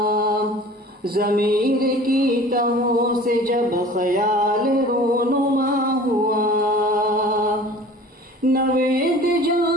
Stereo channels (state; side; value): normal; both; correlation 0.44